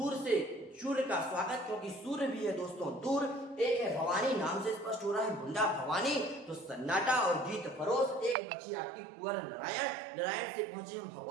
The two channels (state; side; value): drops out; left; at 8.3 s